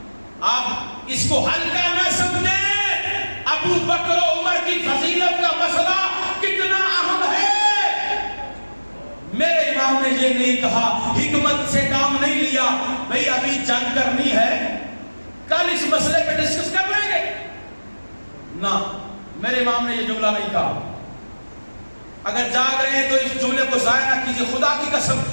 آپ اس کو ہلکا نہ سمجھیں۔ ابو بکر و عمر کی فضیلت کا مسئلہ کتنا اہم ہے۔ میرے امام نے یہ نہیں کہا، حکمت سے کام نہیں لیا، بھئی ابھی جنگ کرنی ہے، کل اس مسئلے پہ ڈسکس کر لیں گے، نہ، میرے امام نے یہ جملہ نہیں کہا۔ اگر جاگ رہے ہیں تو اس جملے کو ضائع نہ کیجئے، خدا کی قسم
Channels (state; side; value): inverted; both; correlation -1.00